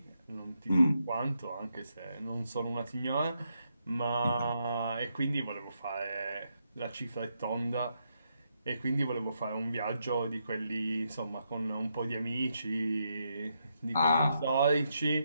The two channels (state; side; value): inverted; both; correlation -0.80